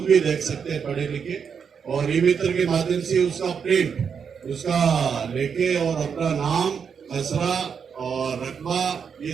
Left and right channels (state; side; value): quieter; left; 6.7 dB